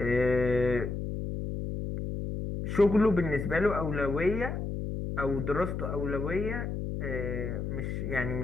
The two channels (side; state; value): left; noise; hum, 4 dB below the sound